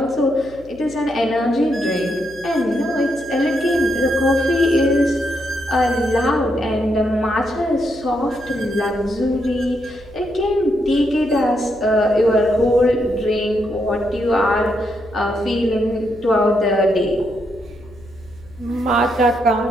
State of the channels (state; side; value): noise; left; hum, 22 dB below the sound